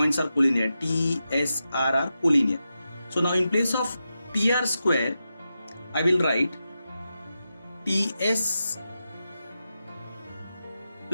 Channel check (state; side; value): inverted; both; correlation -0.90